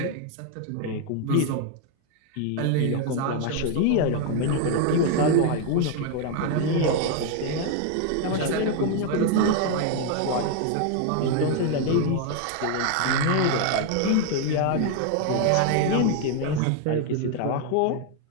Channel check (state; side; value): different; both; correlation 0.00